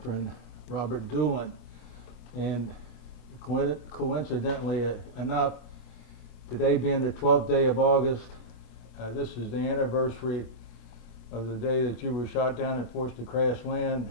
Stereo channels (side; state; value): right; late; 26 ms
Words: Robert Doolan. And coincidentally enough, today being the 12th day of August, this is the anniversary of the day that you were shot down and forced to crash land